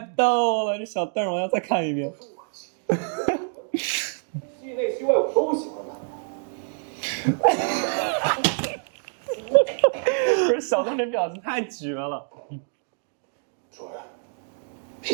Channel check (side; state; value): left; silent; 61 dB below the other